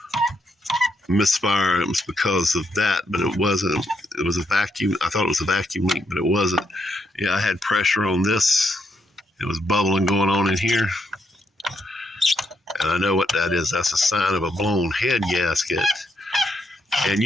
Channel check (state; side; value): normal; both; correlation 0.78